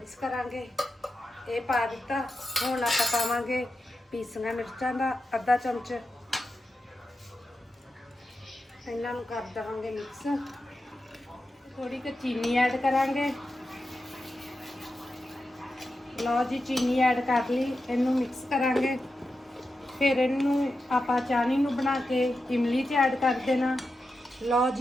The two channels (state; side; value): normal; both; correlation 0.90